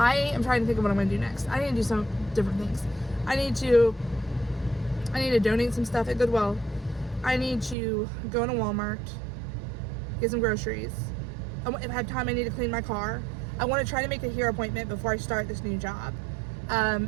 am trying to think of what I'm going to do next. I need to do some different things. I need to donate some stuff at Goodwill. I need to go into Walmart, get some groceries. If I have time, I need to clean my car. I want to try to make a hair appointment before I start this new job.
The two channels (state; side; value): drops out; left; at 7.8 s